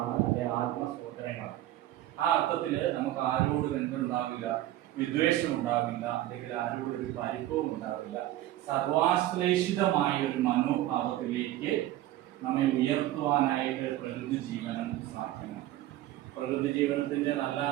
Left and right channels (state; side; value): quieter; left; 14.5 dB